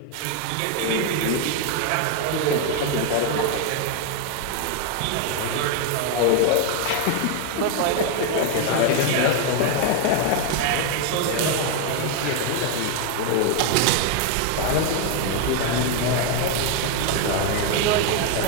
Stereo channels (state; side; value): different; both; correlation 0.01